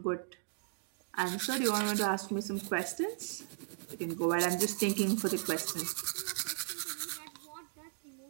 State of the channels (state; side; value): silent; left; digital silence